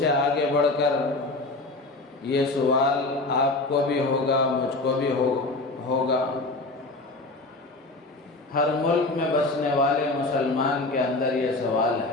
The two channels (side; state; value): right; quieter; 3.0 dB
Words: آگے بڑھ کر یہ سوال آپ کو بھی ہوگا، مجھ کو بھی ہوگا۔ ہر ملک میں بسنے والے مسلمان کے اندر یہ سوال